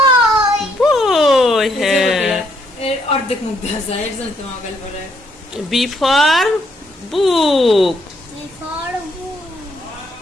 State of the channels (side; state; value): both; normal; correlation 0.71